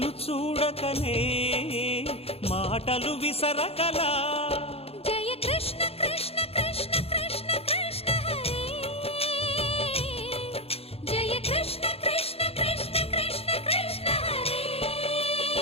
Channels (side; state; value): right; late; 0.29 ms